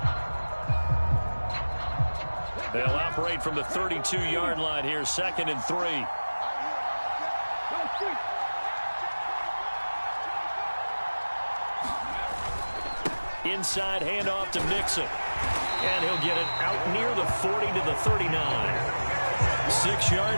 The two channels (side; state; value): both; inverted; correlation -1.00